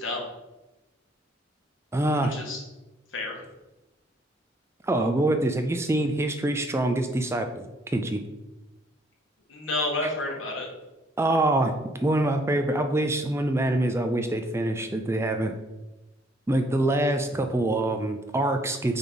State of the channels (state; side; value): normal; both; correlation 0.64